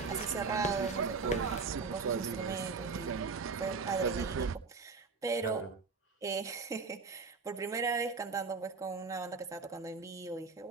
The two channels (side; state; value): left; quieter; 4.6 dB